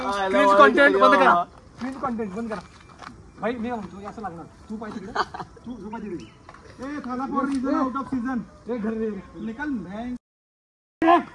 कंटेंट बंद करा. क्रिंज कंटेंट बंद करा भाई. मी म्हणतो असं लागणार. तू पाहिजे तिकडे, तू पाहिजे तिकडे. A Thala for season out of season. एक घर रे निकल मैं.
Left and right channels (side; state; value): both; identical; correlation 1.00